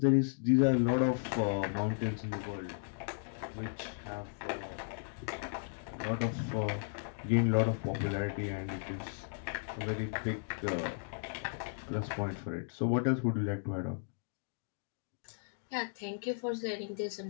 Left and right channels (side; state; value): right; silent; digital silence